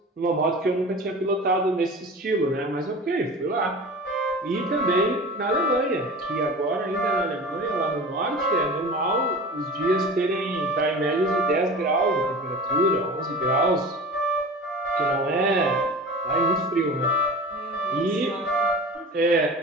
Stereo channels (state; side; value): normal; both; correlation 0.35